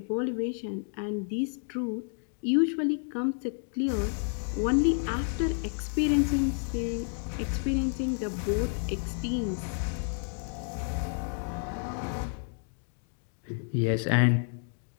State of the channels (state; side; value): silent; right; 58 dB below the other